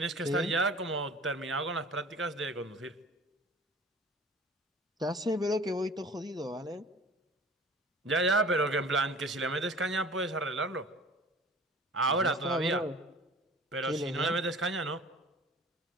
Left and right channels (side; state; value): both; normal; correlation 0.44